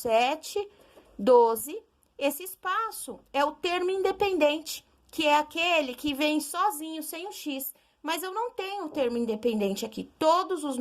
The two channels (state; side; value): identical; both; correlation 1.00